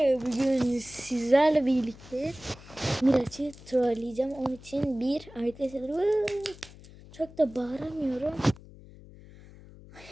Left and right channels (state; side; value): noise; left; hum, 20 dB below the sound